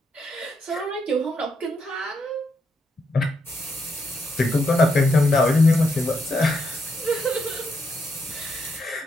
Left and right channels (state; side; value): normal; both; correlation 0.80